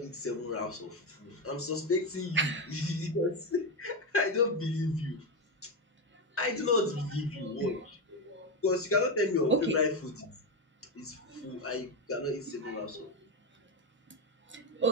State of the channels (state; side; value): normal; both; correlation 0.11